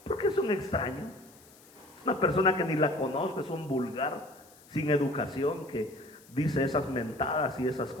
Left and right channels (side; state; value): left; noise; hiss, 25 dB below the sound